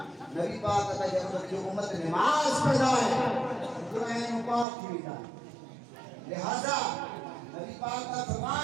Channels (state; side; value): drops out; left; at 4.7 s